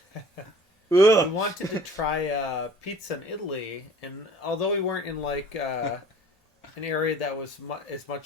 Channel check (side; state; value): both; normal; correlation 0.49